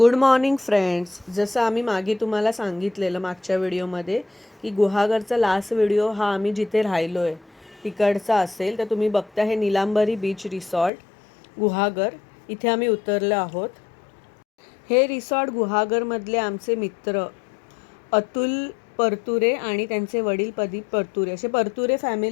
morning friends. जसं आम्ही मागे तुम्हाला सांगितलेलं मागच्या व्हिडिओमध्ये की गुहागरचा लास्ट व्हिडिओ हा आम्ही जिथे राहिलो आहे तिकडचा असेल, तर तुम्ही बघता हे निलांबरी बीच रिसॉर्ट गुहागर, इथे आम्ही उतरलो आहोत. हे रिसॉर्ट गुहागरमधले आमचे मित्र अतुल परतुरे आणि त्यांचे वडील प्रदीप परतुरे, असे परतुरे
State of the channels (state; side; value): drops out; right; at 10.9 s